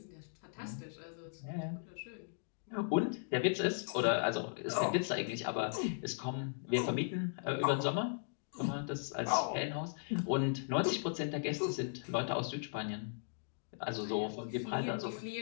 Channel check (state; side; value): silent; right; digital silence